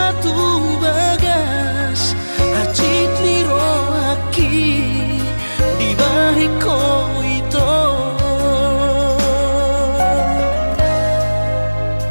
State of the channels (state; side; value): inverted; both; correlation -1.00